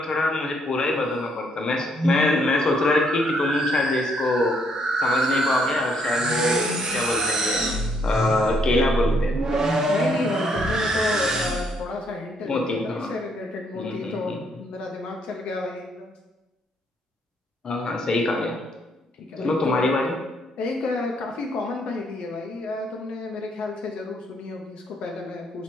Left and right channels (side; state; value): both; normal; correlation 0.70